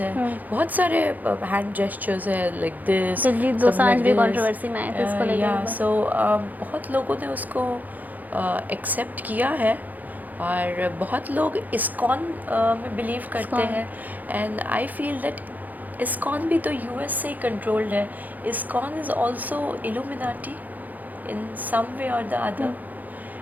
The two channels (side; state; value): left; late; 0.082 ms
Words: हैं। बहुत सारे हैंड जेस्चर्स हैं लाइक दिस, कंट्रोवर्सी में आए थे इसको लेकर। या सो बहुत लोगों ने उसको एक्सेप्ट किया है और बहुत लोग इस्कॉन में बिलीव करते हैं। And I feel that ISKCON भी तो US से ही कंट्रोल्ड है। इस्कॉन इज़ ऑल्सो इल्यूमिनाटी इन सम वे और द अदर।